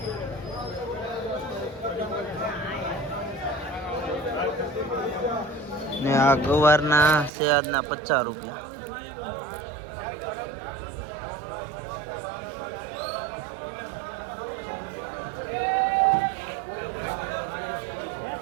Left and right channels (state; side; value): drops out; left; at 7.3 s